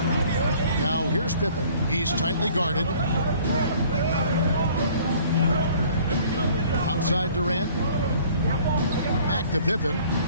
Now here's Pippen. He's tightly guarded. Outside Durant. Back to Pippen.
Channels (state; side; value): inverted; both; correlation -0.54